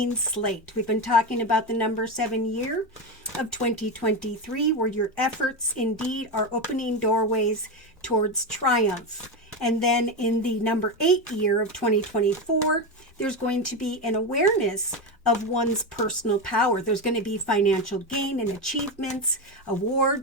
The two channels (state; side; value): normal; both; correlation 0.15